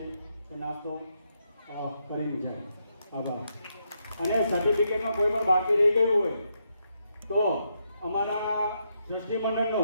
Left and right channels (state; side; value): inverted; both; correlation -0.80